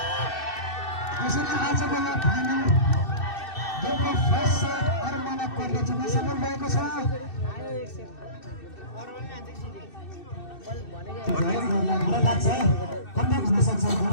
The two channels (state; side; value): late; right; 2.6 ms